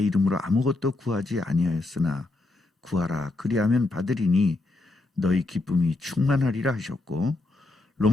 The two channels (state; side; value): quieter; right; 3.0 dB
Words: 이름으로 아무것도 구하지 아니하였으나 구하라 그리하면 받으리니 너희 기쁨이 충만하리라 하셨고,